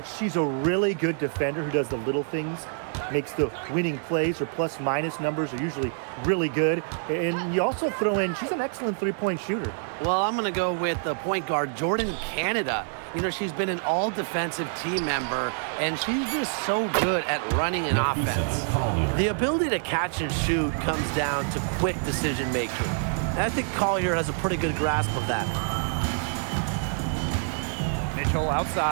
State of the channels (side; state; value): left; silent; 60 dB below the other